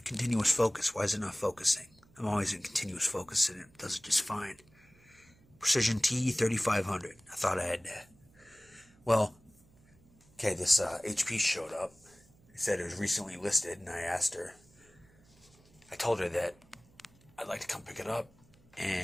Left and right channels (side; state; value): right; noise; hum, 29 dB below the sound